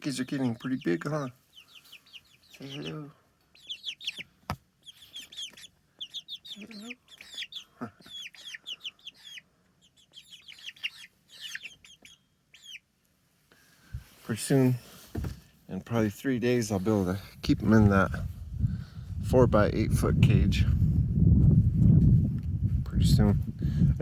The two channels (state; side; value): identical; both; correlation 1.00